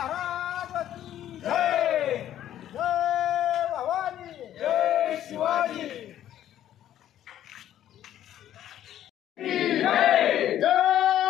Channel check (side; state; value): right; quieter; 11.7 dB